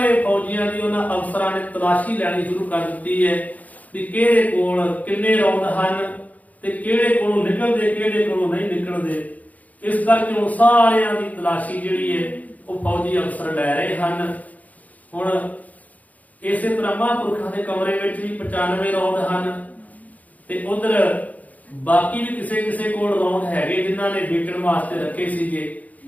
ਫੌਜੀਆਂ ਦੀ ਉਹਨਾਂ ਅਫਸਰਾਂ ਨੇ ਤਲਾਸ਼ੀ ਲੈਣੀ ਸ਼ੁਰੂ ਕਰ ਦਿੱਤੀ ਹੈ ਵੀ ਕਿਹਦੇ ਕੋਲ ਕਿੰਨੇ ਰੌਂਦ ਹਨ ਤੇ ਕਿਹੜੇ ਕੋਲੋਂ ਨਿਕਲਦੇ ਕਿਹੜੇ ਕੋਲੋਂ ਨਹੀਂ ਨਿਕਲਦੇ। ਇਸ ਕਰਕੇ ਹੁਣ ਸਾਰਿਆਂ ਦੀ ਤਲਾਸ਼ੀ ਜਿਹੜੀ ਹੈ ਉਹ ਫੌਜੀ ਅਫਸਰ ਲੈ ਰਹੇ ਹਨ। ਹੁਣ ਇਸੇ ਤਰ੍ਹਾਂ ਮਹਾਂਪੁਰਖਾਂ ਦੇ ਕਮਰੇ ਵਿੱਚ ਵੀ 95 ਰੌਂਦ ਹਨ ਤੇ ਉਧਰ ਬਾਕੀ ਵੀ ਕਿਸੇ ਕੋਲ ਰੌਂਦ ਹੈਗੇ ਜਿਨ੍ਹਾਂ ਨੇ ਵੇਚਣ ਵਾਸਤੇ ਰੱਖੇ ਸੀਗੇ।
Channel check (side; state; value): right; late; 0.075 ms